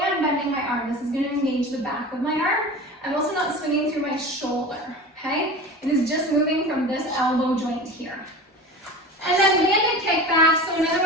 my arm. This is going to engage the back of my arm. I'm also not swinging through my shoulder, okay? It is just moving from this elbow joint here. And then banded kickbacks, so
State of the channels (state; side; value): normal; both; correlation 0.34